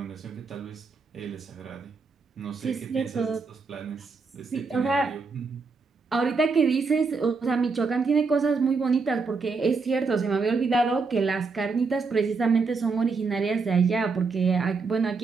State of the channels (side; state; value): left; quieter; 4.5 dB